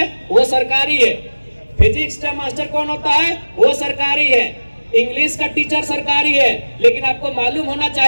वो सरकारी है। फिजिक्स का मास्टर कौन होता है? वो सरकारी है। इंग्लिश का टीचर सरकारी है। लेकिन आपको मालूम होना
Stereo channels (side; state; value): both; inverted; correlation -1.00